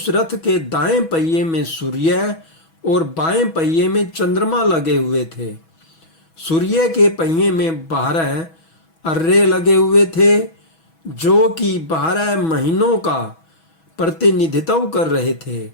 रथ के दाएं पहिए में सूर्य और बाएं पहिए में चंद्रमा लगे हुए थे। सूर्य के पहिए में 12 अर्रे लगे हुए थे, जो कि 12 महीनों का प्रतिनिधित्व कर रहे थे।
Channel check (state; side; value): late; right; 6.1 ms